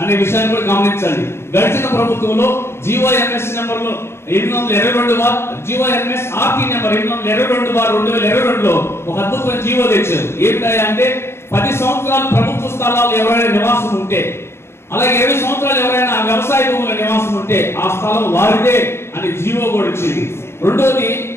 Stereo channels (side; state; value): right; late; 0.12 ms